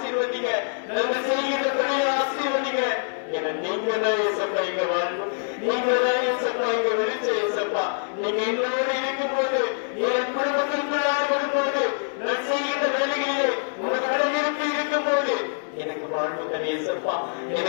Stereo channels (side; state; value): right; silent; digital silence